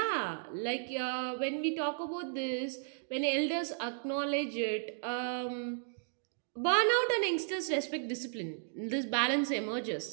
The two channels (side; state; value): left; silent; digital silence